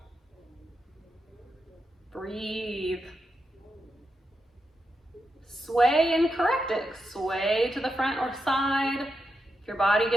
Breathe. Sway and correct it. Sway to the front or side. If your body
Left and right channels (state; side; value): normal; both; correlation 0.86